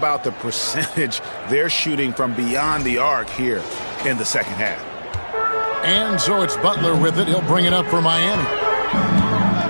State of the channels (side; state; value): both; inverted; correlation -1.00